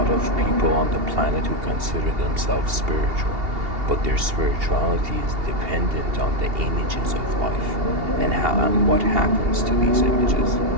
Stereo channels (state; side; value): late; left; 2.8 ms